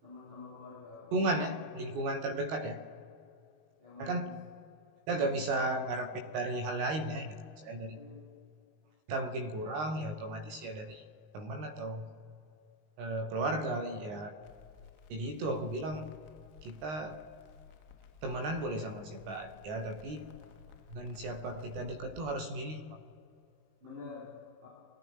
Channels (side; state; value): left; late; 19 ms